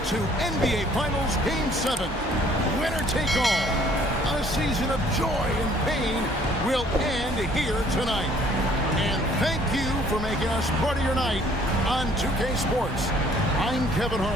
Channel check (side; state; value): both; normal; correlation 0.59